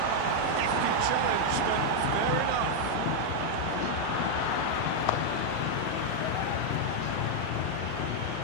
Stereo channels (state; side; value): different; both; correlation -0.01